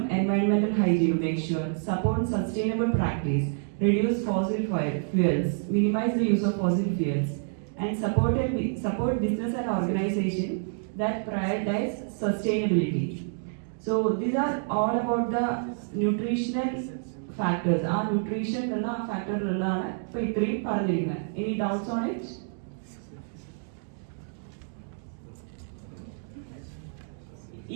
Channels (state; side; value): silent; left; digital silence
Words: environmental hygiene, make sure, support sustainable practice, reduce fossil fuels, minimize the use of fossil fuels, and support business and organization that prioritize sustainability. So these are all about the nutritional factors. Our nutrition factor ഉള്ളതാണ് ഇപ്പോൾ ഇത്രയും പറഞ്ഞിരിക്കുന്നത്. Any doubts on it?